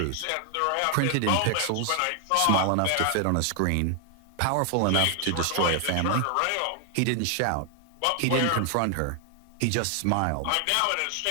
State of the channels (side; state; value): both; different; correlation 0.00